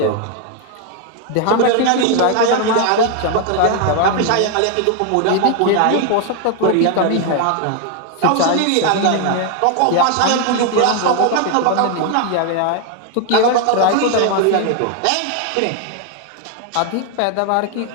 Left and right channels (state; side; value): different; both; correlation 0.01